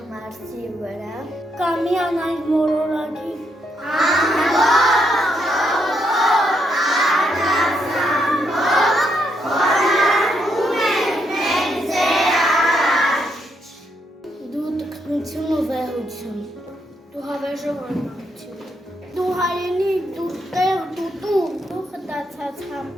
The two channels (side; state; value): both; normal; correlation 0.77